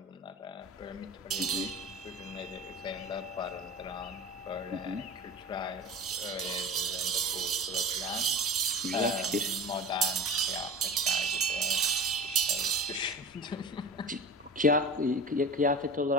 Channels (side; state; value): both; normal; correlation 0.35